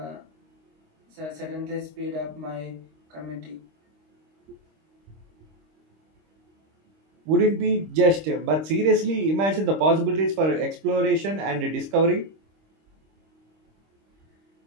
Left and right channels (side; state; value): left; late; 26 ms